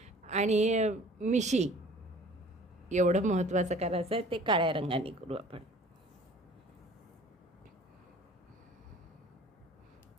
आणि मिशी एवढं महत्त्वाचं करायचं आहे, ते काळ्या रंगाने करू आपण.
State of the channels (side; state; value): both; normal; correlation 0.49